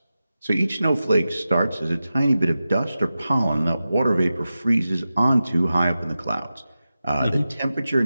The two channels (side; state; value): both; inverted; correlation -0.93